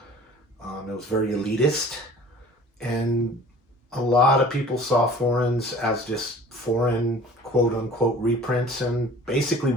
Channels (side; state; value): both; normal; correlation 0.46